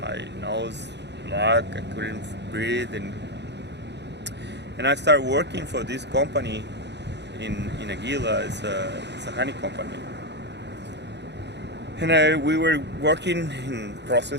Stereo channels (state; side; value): late; left; 0.50 ms